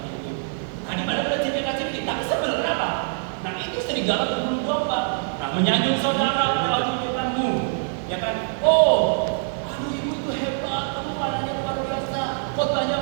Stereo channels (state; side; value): silent; left; digital silence